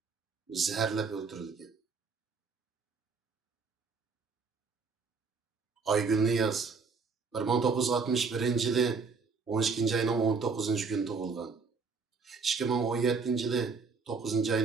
zaharlab o'ldirilgan. Aygul Niyoz 1961 yili 12 ayning 19 kuni tug'ilgan. 2017 yili 9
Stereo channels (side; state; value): left; quieter; 4.8 dB